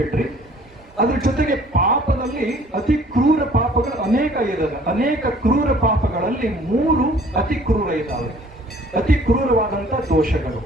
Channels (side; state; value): both; normal; correlation 0.55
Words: ಅದ್ರ ಜೊತೆಗೆ ಪಾಪದಲ್ಲಿ ಅತಿ ಕ್ರೂರ ಪಾಪಗಳು ಅನೇಕ ಇದ್ದಾವೆ. ಅನೇಕ ಕ್ರೂರ ಪಾಪಗಳಲ್ಲಿ 3 ಅತಿ ಕ್ರೂರ ಇದ್ದಾವೆ. ಅತಿ ಕ್ರೂರವಾದಂತ ದೋಷಗಳು